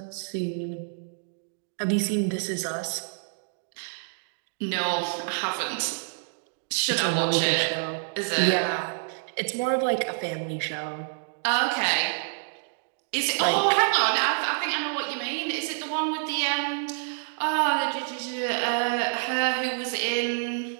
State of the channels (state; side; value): silent; left; digital silence